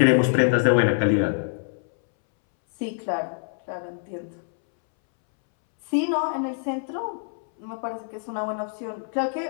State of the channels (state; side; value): silent; right; 62 dB below the other